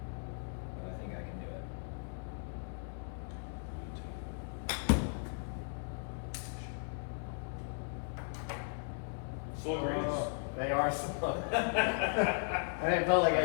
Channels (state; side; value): silent; right; 53 dB below the other